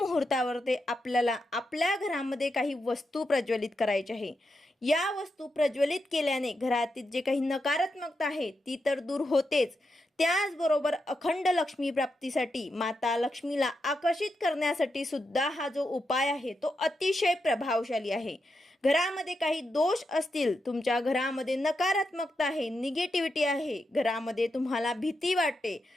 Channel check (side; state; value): both; normal; correlation 0.85